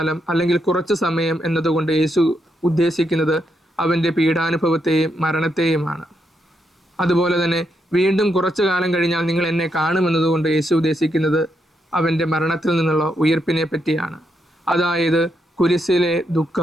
അല്ലെങ്കിൽ കുറച്ചു സമയം എന്നതുകൊണ്ട് യേശു ഉദ്ദേശിക്കുന്നത് അവൻ്റെ പീഡാനുഭവത്തെയും മരണത്തെയുമാണ്. അതുപോലെ തന്നെ വീണ്ടും കുറച്ചു കാലം കഴിഞ്ഞാൽ നിങ്ങൾ എന്നെ കാണുമെന്നതുകൊണ്ട് യേശു ഉദ്ദേശിക്കുന്നത് അവൻ്റെ മരണത്തിൽ നിന്നുള്ള ഉയർപ്പിനെ പറ്റിയാണ്. അതായത് കുരിശിലെ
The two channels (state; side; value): normal; both; correlation 0.80